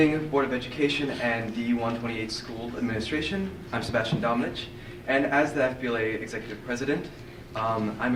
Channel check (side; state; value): both; identical; correlation 1.00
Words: Board of Education and D128 School Administration. I'm Sebastian Dominich, and as the FBLA Executive President, I'm